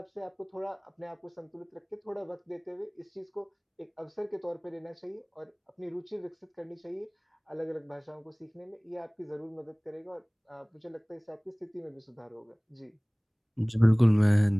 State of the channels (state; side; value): identical; both; correlation 1.00